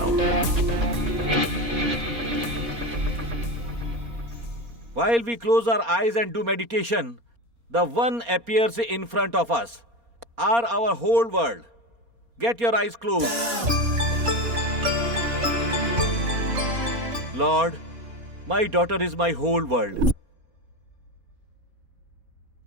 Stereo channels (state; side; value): late; left; 4.2 ms